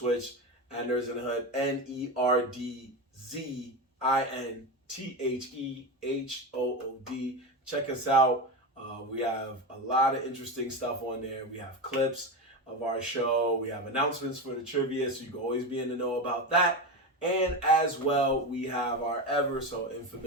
at Nerds in the Hood. NERDZINTHEHOOD. Check us out. We have a lot of interesting stuff on there. We have clips of our show. We have announcements for the trivia, so you can always be in the know about that. And as well, we have our ever so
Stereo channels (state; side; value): normal; both; correlation 0.19